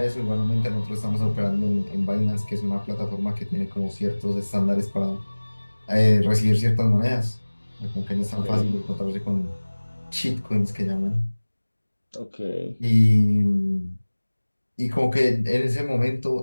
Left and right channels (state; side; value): inverted; both; correlation -1.00